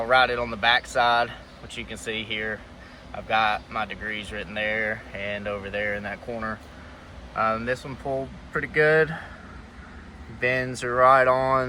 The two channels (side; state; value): both; identical; correlation 1.00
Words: write it on the back side, which you can see here. I've got my degrees written there and over there in that corner. This one pulled pretty good. Bends are right